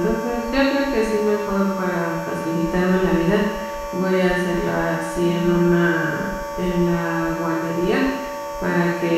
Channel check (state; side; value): identical; both; correlation 1.00